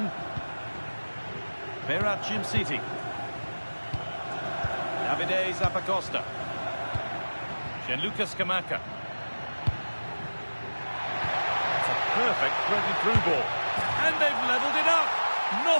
Berat Jimciti. Davide Zappacosta. Gianluca Scamacca. It's a perfect threaded-through ball. And they've levelled it up.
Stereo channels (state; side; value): inverted; both; correlation -1.00